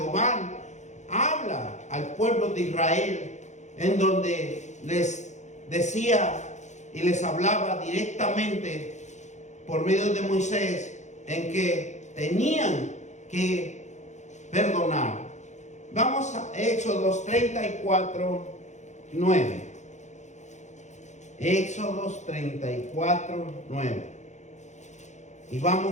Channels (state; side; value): late; right; 0.34 ms